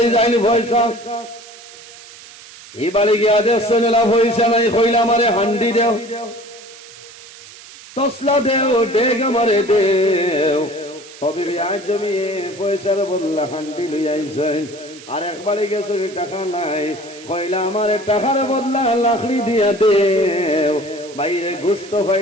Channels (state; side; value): noise; right; hiss, 18 dB below the sound